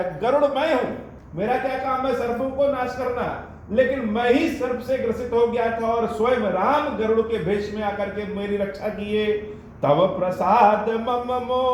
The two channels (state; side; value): identical; both; correlation 1.00